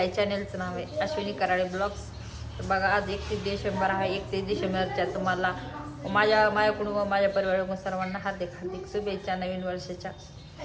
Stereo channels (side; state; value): both; identical; correlation 1.00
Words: चॅनेलचं नाव आहे अश्विनी कराळे ब्लॉग्स. तर बघा, आज 31 डिसेंबर आहे. 31 डिसेंबरच्या तुम्हाला माझ्याकडून व माझ्या परिवाराकडून सर्वांना हार्दिक हार्दिक शुभेच्छा नवीन वर्षाच्या.